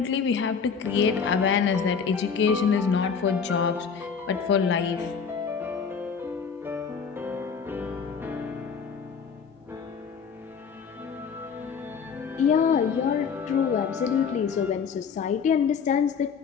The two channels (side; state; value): right; quieter; 6.2 dB